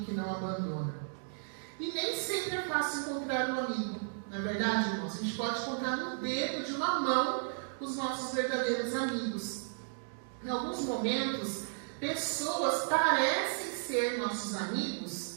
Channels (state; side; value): silent; left; digital silence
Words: que não abandona. E nem sempre é fácil encontrar um amigo, não é verdade, irmãos? A gente pode contar no dedo de uma mão os nossos verdadeiros amigos. Em alguns momentos, pessoas parecem ser nossos amigos,